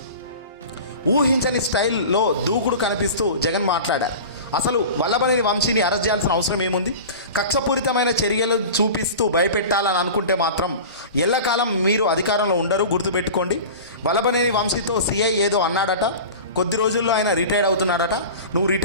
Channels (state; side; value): inverted; both; correlation -0.35